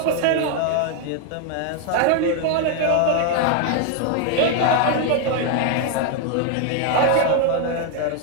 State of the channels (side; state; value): both; different; correlation 0.01